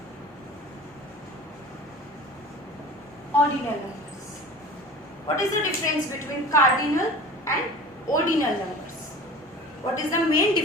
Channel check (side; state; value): both; normal; correlation 0.39